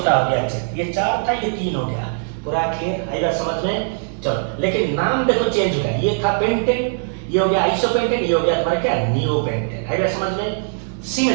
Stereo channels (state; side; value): silent; left; 66 dB below the other